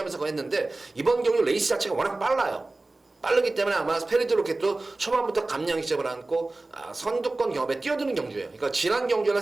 했는데 이번 경주 레이스 자체가 워낙 빨라요. 빠르기 때문에 아마 페르디 로켓도 초반부터 감량 시점을 안고 선두권 경합에 뛰어드는 경주예요. 그러니까 지난 경주는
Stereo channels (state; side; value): quieter; left; 3.1 dB